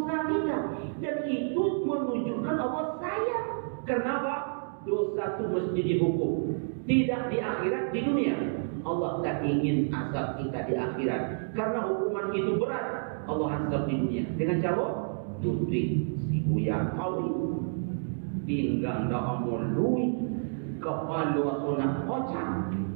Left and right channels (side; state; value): left; silent; digital silence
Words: kita, dan itu menunjukkan Allah sayang. Kenapa? Dosa itu mesti dihukum, tidak di akhirat, di dunia. Allah tak ingin azab kita di akhirat, karena hukuman itu berat. Allah azab di dunia dengan cara Ludwig si Buya Kawi pinggang dah amul lui kepala sunat kocak,